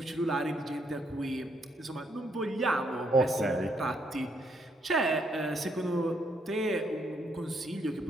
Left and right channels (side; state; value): both; normal; correlation 0.74